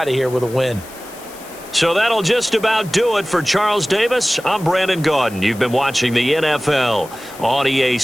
of here with a win. So that'll just about do it for Charles Davis. I'm Brandon Gaudin. You've been watching the NFL on EA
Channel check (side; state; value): left; noise; hiss, 19 dB below the sound